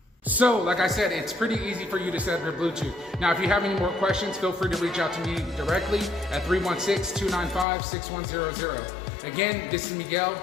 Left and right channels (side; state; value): right; drops out; at 7.7 s